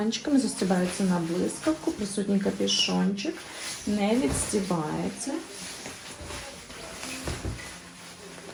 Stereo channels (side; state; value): both; identical; correlation 1.00